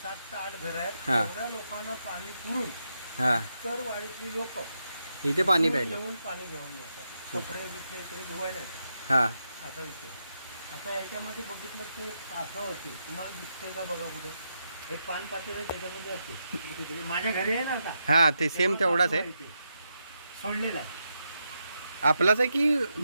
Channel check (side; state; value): both; inverted; correlation -0.84